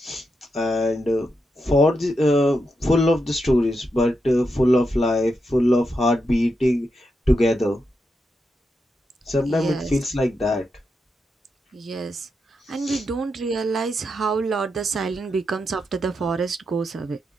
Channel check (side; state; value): both; normal; correlation 0.85